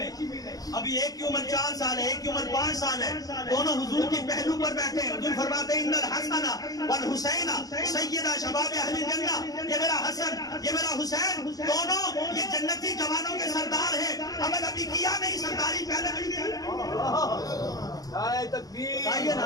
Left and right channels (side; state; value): right; late; 0.18 ms